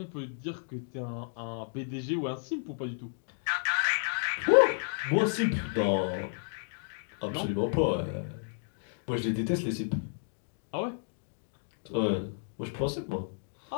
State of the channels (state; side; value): silent; right; digital silence